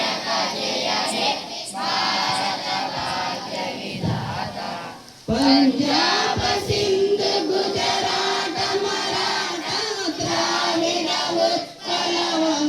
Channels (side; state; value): both; identical; correlation 1.00